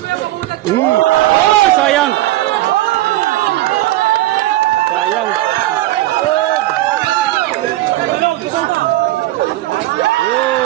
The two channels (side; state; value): left; quieter; 16.3 dB